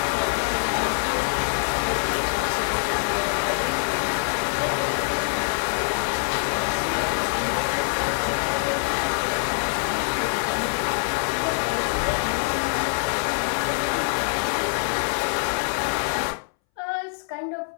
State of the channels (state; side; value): silent; right; 61 dB below the other